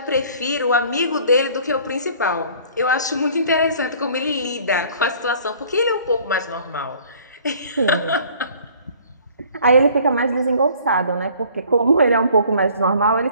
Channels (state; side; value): inverted; both; correlation -0.53